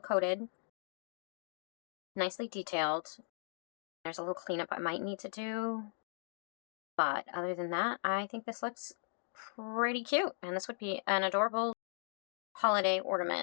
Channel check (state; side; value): silent; right; digital silence